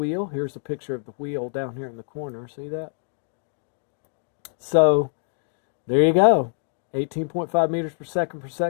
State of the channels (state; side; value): silent; right; digital silence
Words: Here's a picture of the wheel down here in the corner. See that? So there you go. 18.5 meters per